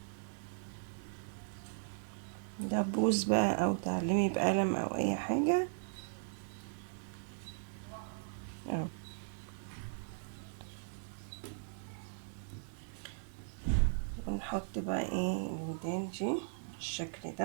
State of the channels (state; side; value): silent; left; digital silence